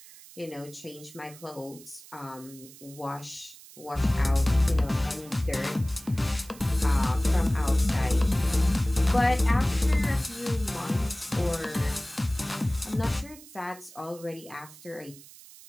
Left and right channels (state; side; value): noise; right; hiss, 20 dB below the sound